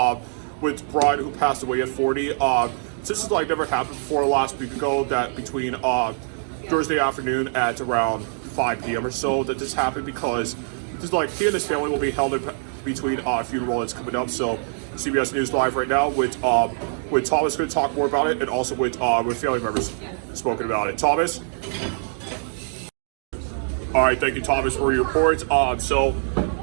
who passed away at 40. This is like never happened before last week ago, that between Thursday afternoon at around 5 p.m. or so, that this happened because this is like he and his family will be held in between funeral that's coming up. So CBS News Live right now with Thomas going to talk more about it, and also with family members spoken about it. Thomas. All right, thank you, Thomas, for your report. So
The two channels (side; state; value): left; silent; digital silence